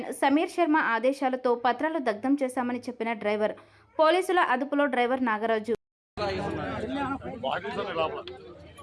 Sameer Sharma ఆదేశాలతో పత్రాలు దగ్ధం చేశామని చెప్పిన డ్రైవర్. పోలీసుల అదుపులో డ్రైవర్ నాగరాజు.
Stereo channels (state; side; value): identical; both; correlation 1.00